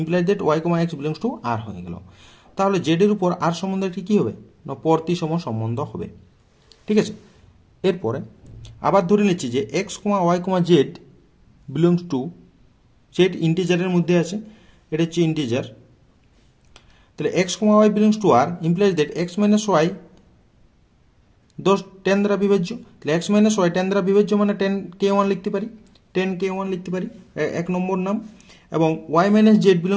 that y, x belongs to R হয়ে গেল। তাহলে জেড এর উপর আর সম্বন্ধটি কি হবে না প্রতিসম সম্বন্ধ হবে, ঠিক আছে। এরপরে আবার ধরে নিচ্ছি যে x, y, z belongs to, z ইন্টিজারের মধ্যে আছে, এটা হচ্ছে ইন্টিজার। তাহলে x, y belongs to R implies that x - y 10 দ্বারা বিভাজ্য। তাহলে এক্স - ওয়াই 10 দ্বারা বিভাজ্য মানে 10k1 লিখতে পারি, 10k1 লিখতে পারি, 1 নম্বর নাম। এবং y - Z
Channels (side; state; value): both; identical; correlation 1.00